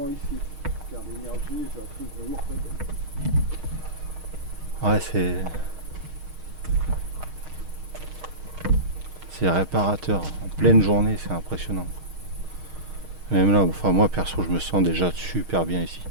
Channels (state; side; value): late; left; 6.4 ms